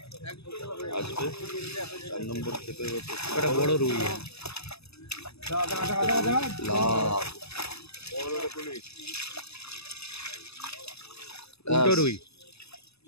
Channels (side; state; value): right; late; 0.79 ms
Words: আসবে। 4 নম্বর ক্ষেপে একটা বড় রুই লাভ। উল্টো রুই